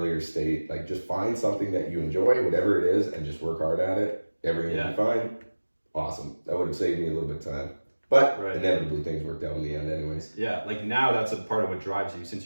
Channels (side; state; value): both; inverted; correlation -1.00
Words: state, like just find something that you enjoy, whatever it is, and just work hard at it. Everything will be fine. Awesome. That would have saved me a little bit of time. But inevitably things worked out in the end anyways. Yeah, like now that's a part of what drives you,